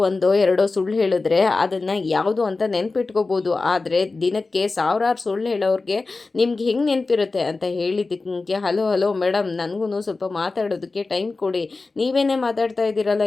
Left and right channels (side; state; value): right; quieter; 3.7 dB